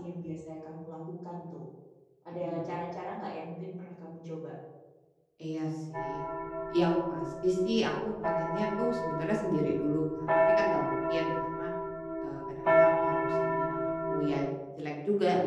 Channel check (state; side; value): identical; both; correlation 1.00